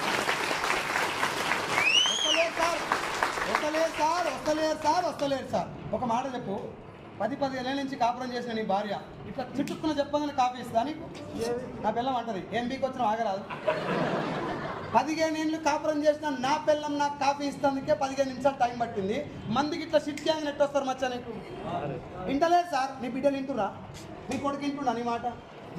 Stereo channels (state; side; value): identical; both; correlation 1.00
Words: వస్తలేరు సార్. ఒక మాట చెప్పు, 10-15 ఏళ్ళ నుంచి కాపురం చేసిన నీ భార్య ఇట్లా చుట్టుకున్న చెప్పగానే కాఫీ ఇస్తా నీకు? నా పిల్లం అంటది, ఏం బీకి వచ్చినా ఆగరాదు. 15 ఏళ్ళు కాపురం చేసిన నా పిల్లం నాకు కాఫీ ఇస్తానికే 15 నిమిషాలు టైం పట్టింది. మందికి ఇట్లా షిట్ గ్యాంగ్ నెట్ వస్తారు మచ్చా నీకు? వింటలేదు సార్. నీ బిడ్డలు వింటురా? నీ కొడుకు వింటున్నా నీ మాట?